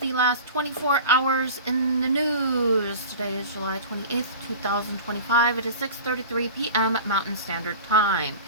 last 24 hours in the news. Today is July 28th, 2025. It is 6:33 p.m. Mountain Standard Time.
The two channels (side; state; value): both; inverted; correlation -0.37